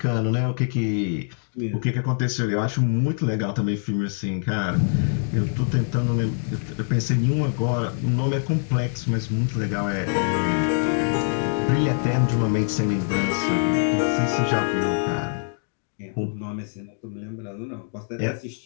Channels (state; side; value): silent; right; digital silence